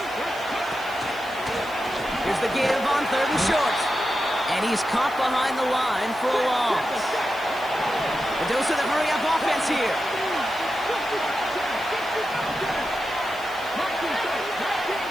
Here's the give on 3rd and short. And he's caught behind the line for a loss. The dose of the hurry-up offense here.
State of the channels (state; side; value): noise; right; hiss, 21 dB below the sound